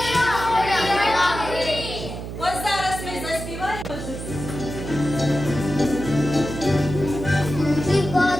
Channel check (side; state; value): right; noise; hum, 8 dB below the sound